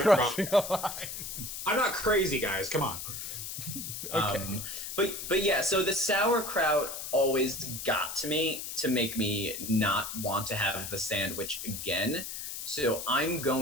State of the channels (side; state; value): left; noise; hiss, 7 dB below the sound